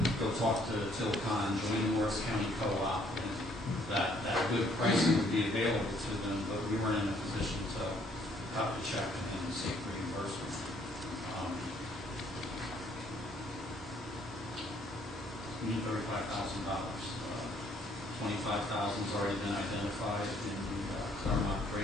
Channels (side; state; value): both; normal; correlation 0.64